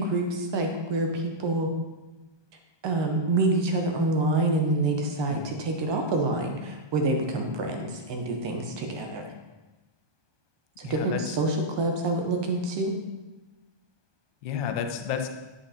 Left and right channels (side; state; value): left; late; 1.2 ms